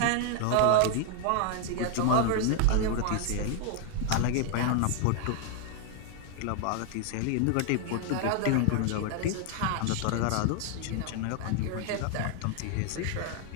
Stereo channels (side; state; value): both; different; correlation 0.00